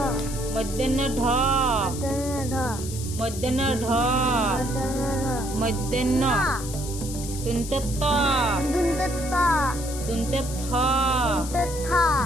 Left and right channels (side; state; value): left; noise; hiss, 10 dB below the sound